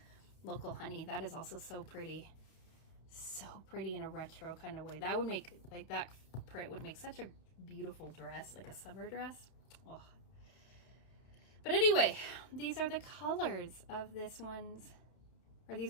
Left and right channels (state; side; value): late; right; 31 ms